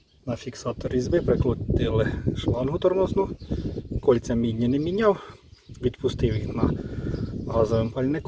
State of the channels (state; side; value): identical; both; correlation 1.00